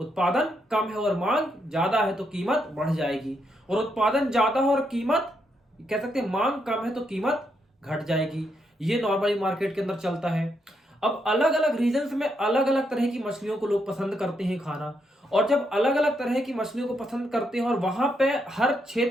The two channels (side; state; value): both; normal; correlation 0.79